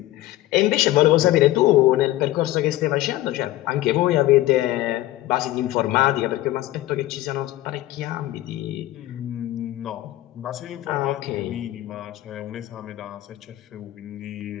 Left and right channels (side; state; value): right; quieter; 15.8 dB